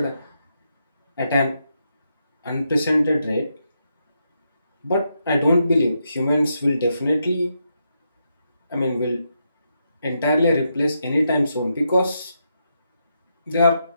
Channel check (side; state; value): both; inverted; correlation -0.82